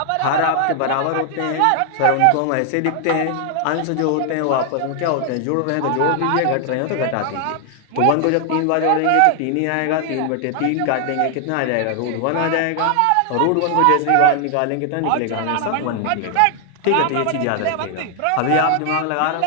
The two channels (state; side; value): different; both; correlation 0.00